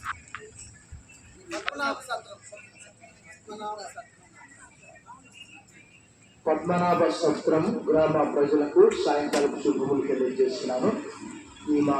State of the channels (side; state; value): both; identical; correlation 1.00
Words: పద్మనాభ సత్రం గ్రామ ప్రజలకు సాయంకాలం శుభములు తెలియజేస్తున్నాను. ఈ మా